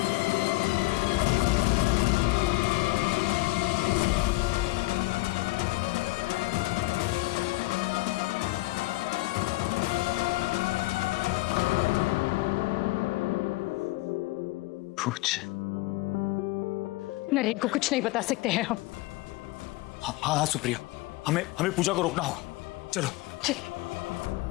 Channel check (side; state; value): right; quieter; 20.4 dB